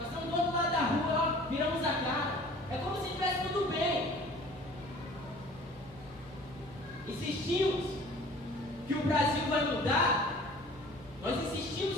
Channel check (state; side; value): noise; left; hum, 22 dB below the sound